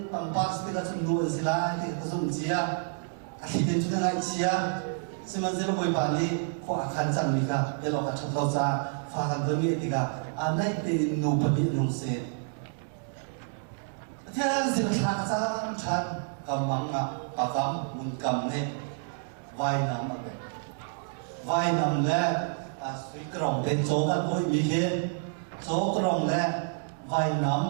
pang pas ki la sunu zila ki ka zum zia aki de tu na chia sima zelo boi ba ni ko akan sa ni ka be lo ka chang do za fa ka do ni ti ka anai ke nu pa ni nong se thế dịch khá sang chăn cầm măng à bà cầm muốn cầm hết vai nằm mà vậy vai nằm lẽ suy cái rồng đến chỗ cái mũi bị thế chỗ cái rồng lẽ vai nằm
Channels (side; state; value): left; silent; 59 dB below the other